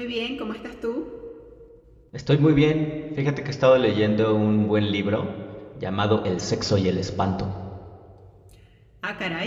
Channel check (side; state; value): both; identical; correlation 1.00